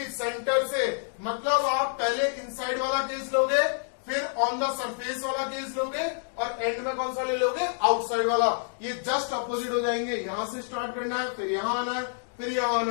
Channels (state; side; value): silent; right; digital silence